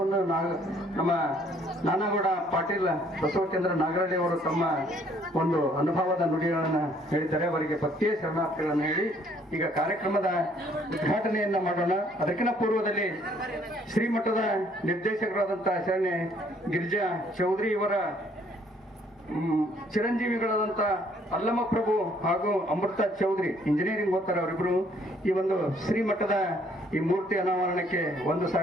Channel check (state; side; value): normal; both; correlation 0.63